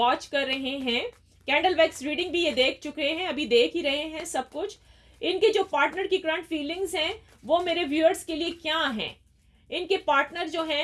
कर रहे हैं, कैंडल वैक्स रीडिंग भी ये देख चुके हैं, अभी देख ही रहे हैं सब कुछ, इनके जो पार्टनर की करंट फीलिंग्स हैं वो मेरे व्यूअर्स के लिए क्या हैं। इनके पार्टनर जो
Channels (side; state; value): both; identical; correlation 1.00